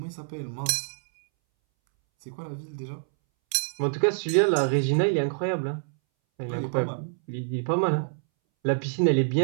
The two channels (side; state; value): left; silent; 61 dB below the other